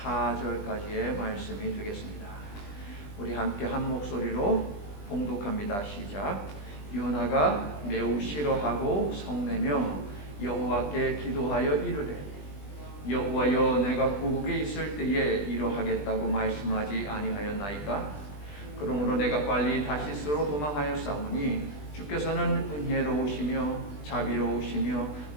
말씀이 되겠습니다. 우리 함께 한 목소리로 봉독합니다. 시작. 요나가 매우 싫어하고 성내며 여호와께 기도하여 이르되 여호와여, 내가 고국에 있을 때에 이러하겠다고 말씀하지 아니하였나이까? 그러므로 내가 빨리 다시스로 도망하였사오니 주께서는 은혜로우시며 자비로우시며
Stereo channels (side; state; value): right; late; 20 ms